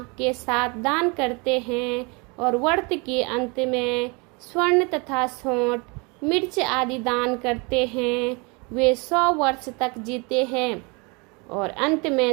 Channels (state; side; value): quieter; left; 29.8 dB